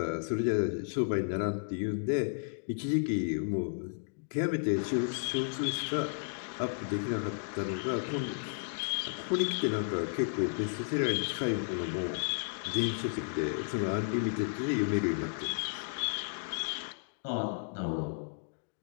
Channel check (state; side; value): silent; right; digital silence